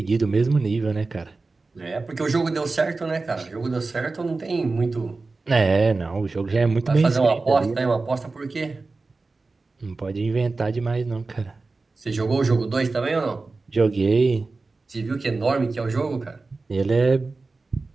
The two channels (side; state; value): left; quieter; 3.7 dB